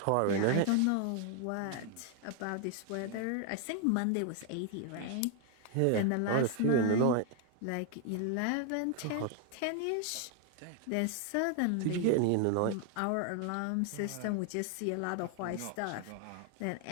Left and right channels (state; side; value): different; both; correlation 0.01